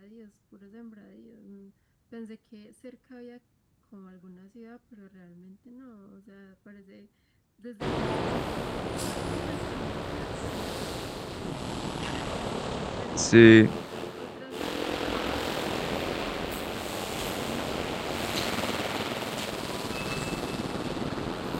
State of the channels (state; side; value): identical; both; correlation 1.00